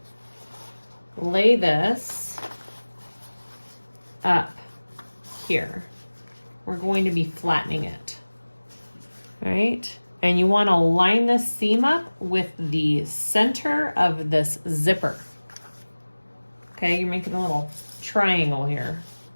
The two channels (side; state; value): both; inverted; correlation -1.00